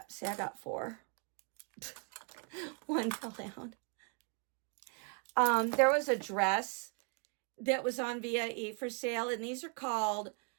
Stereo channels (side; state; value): left; quieter; 37.0 dB